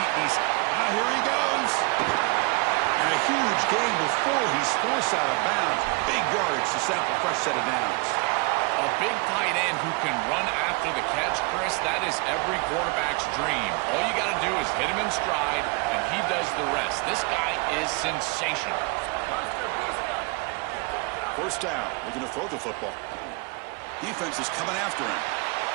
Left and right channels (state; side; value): quieter; left; 28.8 dB